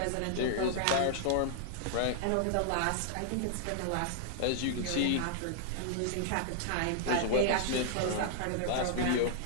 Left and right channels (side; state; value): both; different; correlation -0.01